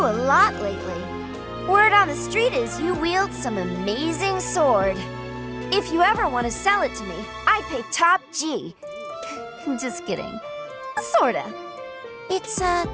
lot lately. Word on the street is you wield some amazing sword. If you ever want to sell it to me, I'd pay top G. Just kidding. Sorta. It's,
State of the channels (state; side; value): identical; both; correlation 1.00